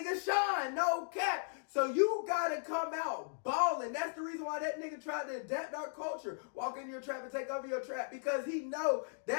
shine. No cap. So you gotta come out balling. That's the reason why that nigga tried to adapt our culture. Walk in your trap and take over your trap. Because he know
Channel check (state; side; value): silent; right; digital silence